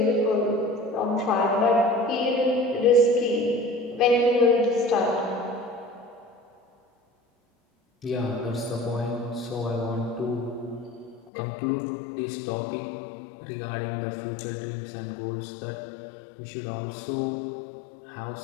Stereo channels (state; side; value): drops out; right; at 11.3 s